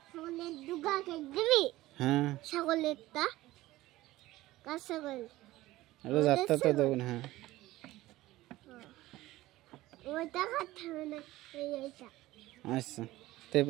ছাগলের দুগা কেক দিবি? হ্যাঁ ছাগলেরটা কার ছাগল? রোজ আটটা তো দেবো না। হ্যাঁ ওইটা খাতে হবে না, এইটা। আচ্ছা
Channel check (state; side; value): quieter; left; 17.2 dB